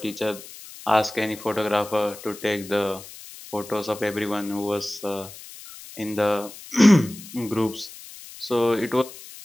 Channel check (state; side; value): noise; left; hiss, 16 dB below the sound